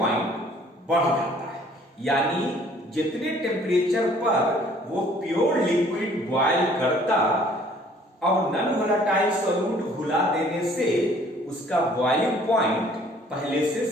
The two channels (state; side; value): normal; both; correlation 0.57